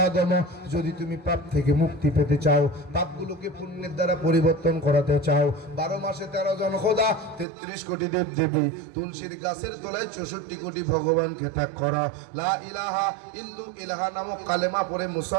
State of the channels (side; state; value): left; drops out; at 7.5 s